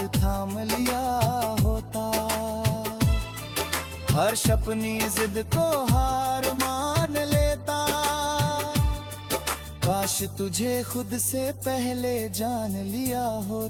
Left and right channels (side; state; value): both; identical; correlation 1.00